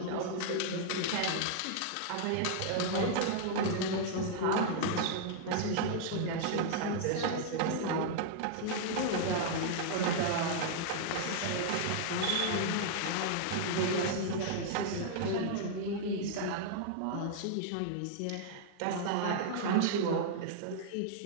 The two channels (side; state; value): both; different; correlation -0.01